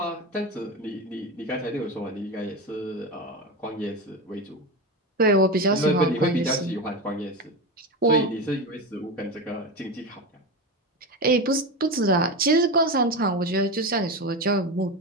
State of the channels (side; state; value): both; normal; correlation 0.20